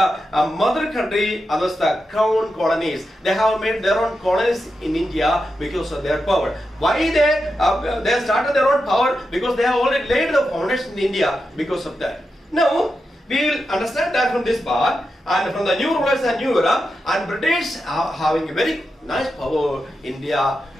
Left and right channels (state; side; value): normal; both; correlation 0.88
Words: mother country, others the crown colonies. They have made their own colonies in India because of their power. Why they started their own power? Because they have already laid the foundation in India because of that. Now, we will understand that from this part, and from the new rulers and new era, and British are having a very nice power in India,